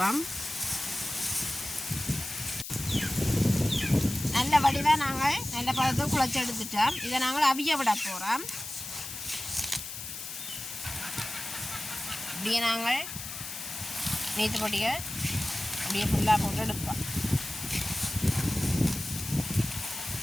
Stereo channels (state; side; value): noise; left; hiss, 8 dB below the sound